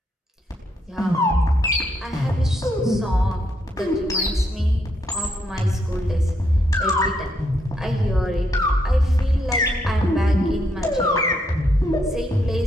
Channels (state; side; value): normal; both; correlation 0.76